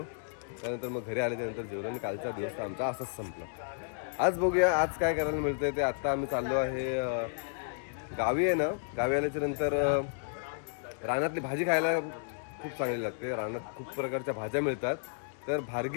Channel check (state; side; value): silent; right; digital silence